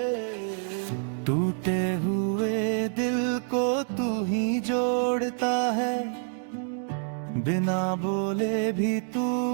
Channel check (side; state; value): left; silent; 60 dB below the other